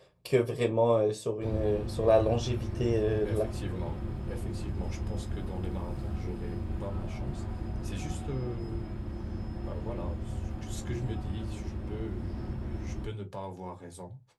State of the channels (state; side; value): identical; both; correlation 1.00